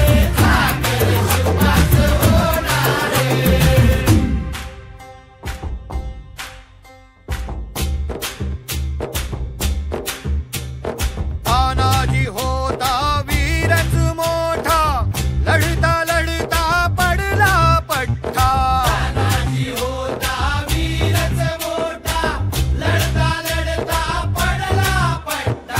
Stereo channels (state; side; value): identical; both; correlation 1.00